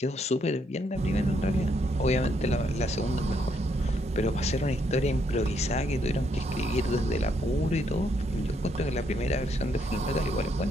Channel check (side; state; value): both; normal; correlation 0.74